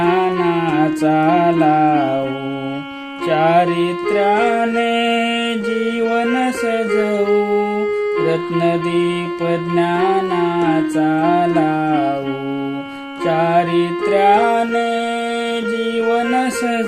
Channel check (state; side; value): identical; both; correlation 1.00